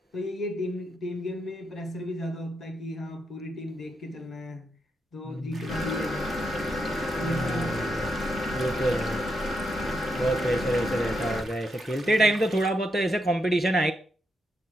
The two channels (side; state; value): both; normal; correlation 0.82